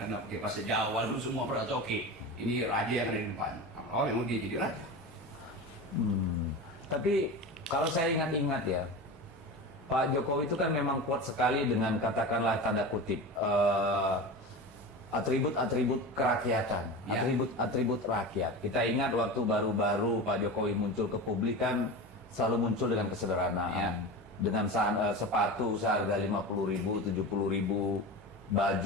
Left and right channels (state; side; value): normal; both; correlation 0.27